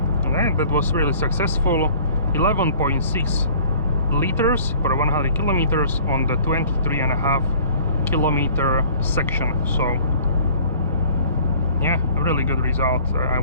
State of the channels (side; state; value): both; inverted; correlation -0.51